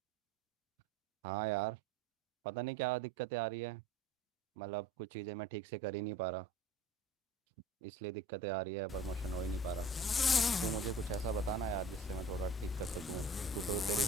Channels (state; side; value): normal; both; correlation 0.44